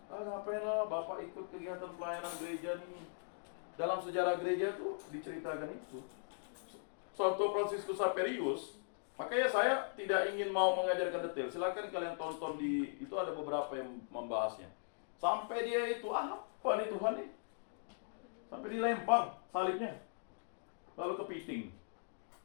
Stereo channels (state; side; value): silent; right; digital silence